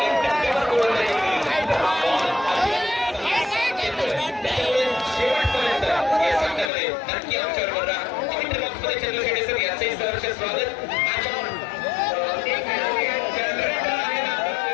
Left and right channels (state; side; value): drops out; right; at 6.7 s